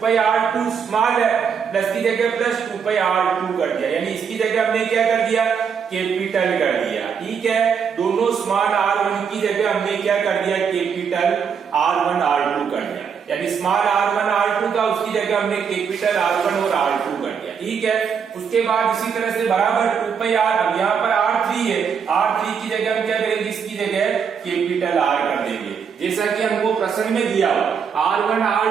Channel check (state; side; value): quieter; left; 6.8 dB